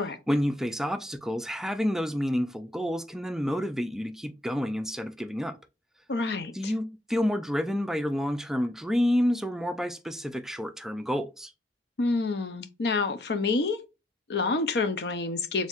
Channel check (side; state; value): both; normal; correlation 0.74